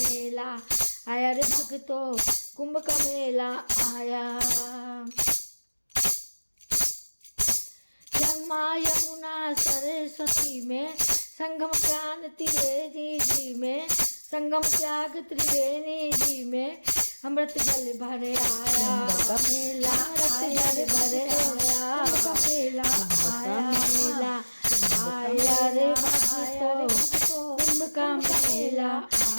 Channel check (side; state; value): both; inverted; correlation -1.00